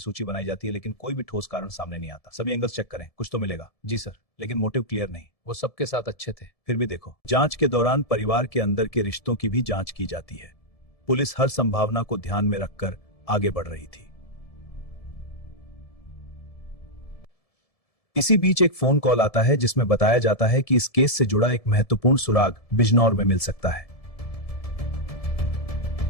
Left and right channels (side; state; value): right; late; 1.7 ms